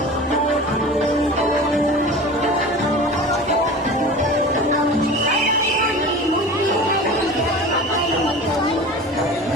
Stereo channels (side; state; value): both; normal; correlation 0.36